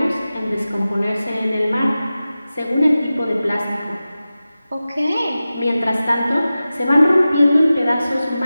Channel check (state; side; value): inverted; both; correlation -0.95